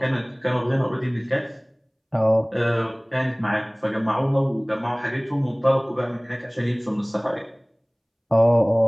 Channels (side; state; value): both; identical; correlation 1.00